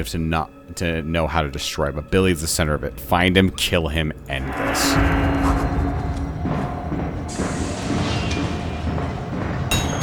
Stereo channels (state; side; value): identical; both; correlation 1.00